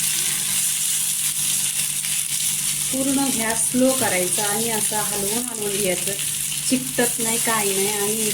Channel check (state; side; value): identical; both; correlation 1.00